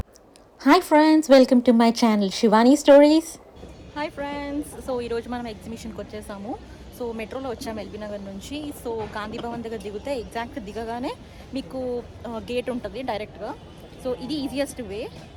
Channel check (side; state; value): both; identical; correlation 1.00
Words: Hi friends, welcome to my channel Shivani stories. Hi friends, so ఈరోజు మనం ఎగ్జిబిషన్కి వచ్చేసాము. సో మెట్రోలో వచ్చాము ఎల్బీ నగర్ నుంచి. సో గాంధీ భవన్ దగ్గర దిగితే ఎగ్జాక్ట్ దిగగానే మీకు గేట్ ఉంటుంది డైరెక్ట్గా. సో ఇది easiest way.